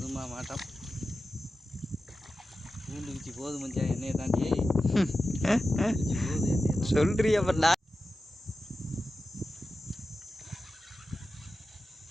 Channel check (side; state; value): both; normal; correlation 0.93